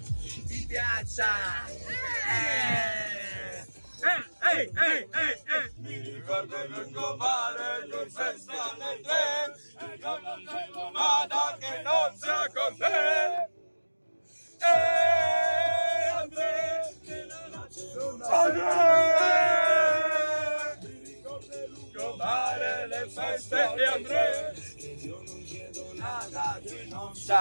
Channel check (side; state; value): both; inverted; correlation -1.00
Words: piaccia. Mi ricordo il lungomare, lui senza nel tren, e io non vedo nada che non sia con te. Andrea, mi ricordo il lungomare, le feste e Andrea, io non chiedo nada che non